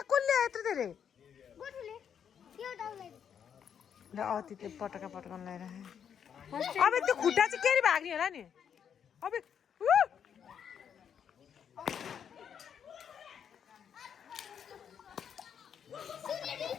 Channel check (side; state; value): right; quieter; 8.1 dB